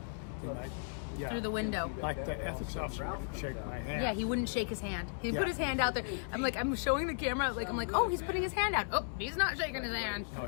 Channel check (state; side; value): silent; right; digital silence